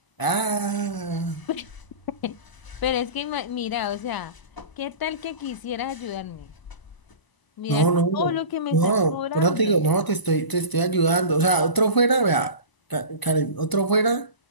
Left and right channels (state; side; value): late; right; 1.0 ms